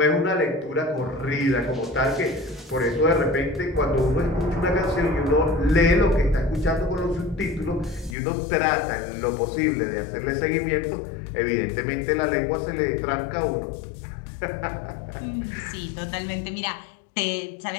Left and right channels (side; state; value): right; drops out; at 8.2 s